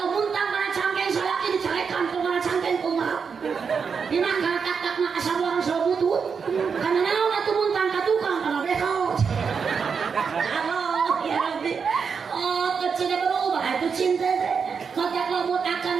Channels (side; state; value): left; quieter; 6.0 dB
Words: muntang kana cangkeng salaki dicarekan ku kana cangkeng kumaha. Dina katak na asabuang sabutut. Kana naon atuh muntang ka tukang kana bekot. Allah ya Rabbi. Kecina berubah itu cinta teh. Maka lamun